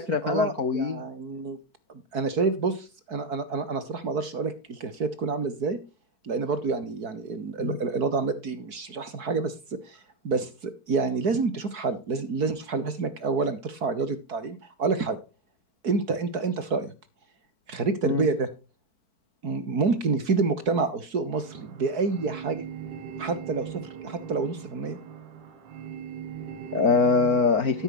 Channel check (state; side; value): late; left; 4.6 ms